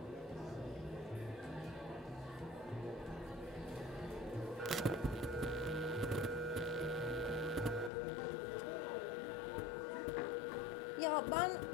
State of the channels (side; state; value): right; drops out; at 7.9 s